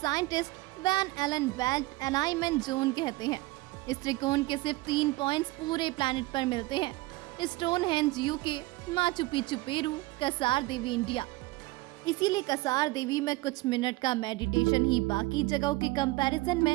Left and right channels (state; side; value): quieter; left; 20.9 dB